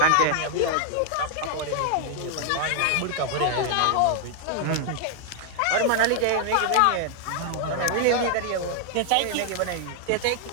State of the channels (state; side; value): different; both; correlation 0.00